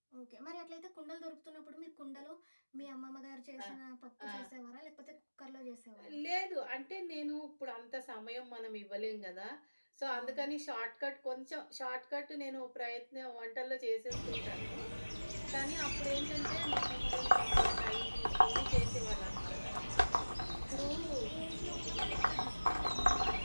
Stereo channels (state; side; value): inverted; both; correlation -1.00